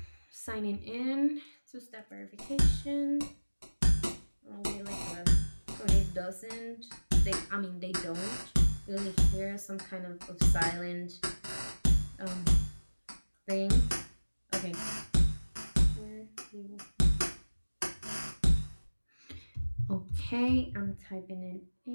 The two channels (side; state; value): both; inverted; correlation -1.00